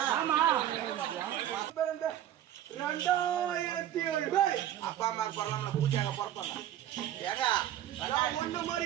2007 அப்பா அம்மா பரவாயில்ல பூஜையாக பிறப்பாங்க. ஏங்க ஒண்ணு மாதிரி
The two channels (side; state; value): left; quieter; 11.8 dB